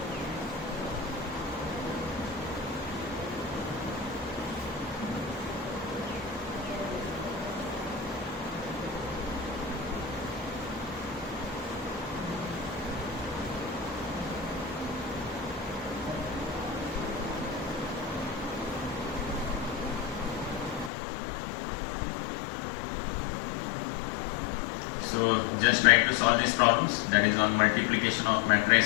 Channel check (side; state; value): right; drops out; at 20.9 s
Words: So just try to solve these problems, that is on multiplication of